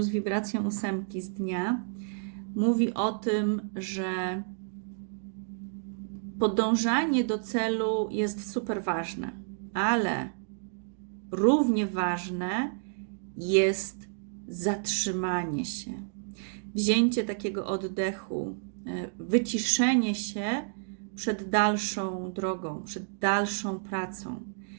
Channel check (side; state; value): left; silent; digital silence